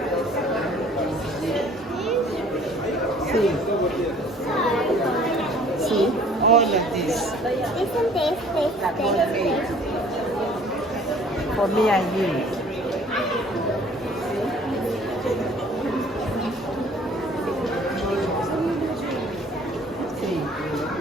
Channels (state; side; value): normal; both; correlation 0.53